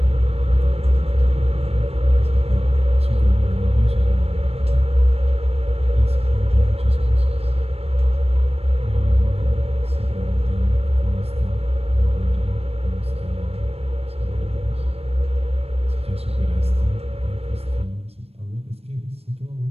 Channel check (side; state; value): left; late; 0.29 ms